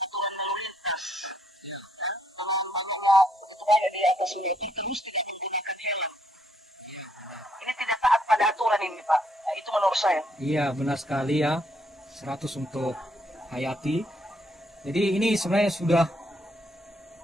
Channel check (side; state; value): both; normal; correlation 0.72